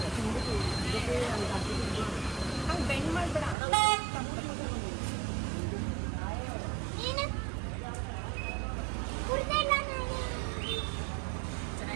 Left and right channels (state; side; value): drops out; left; at 3.6 s